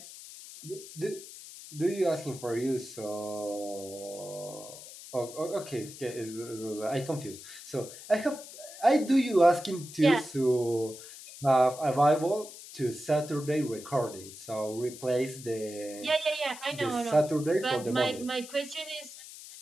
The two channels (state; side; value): noise; left; hiss, 15 dB below the sound